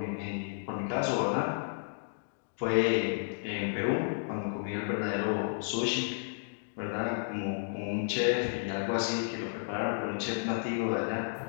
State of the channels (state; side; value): silent; right; digital silence